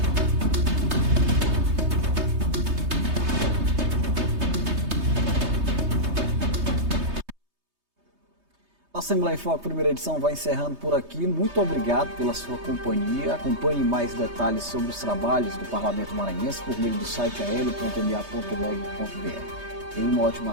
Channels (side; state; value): left; late; 3.2 ms